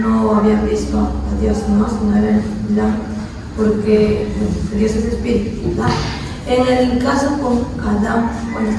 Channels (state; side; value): identical; both; correlation 1.00